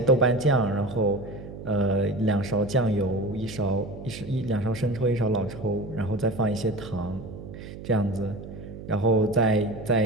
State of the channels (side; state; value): right; noise; hum, 12 dB below the sound